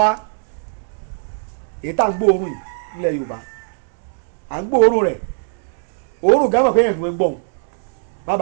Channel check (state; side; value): silent; left; digital silence